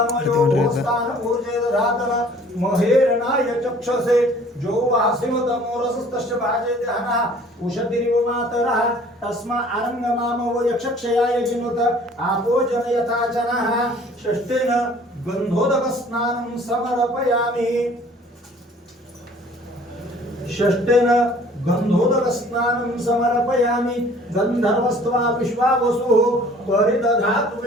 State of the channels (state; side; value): normal; both; correlation 0.53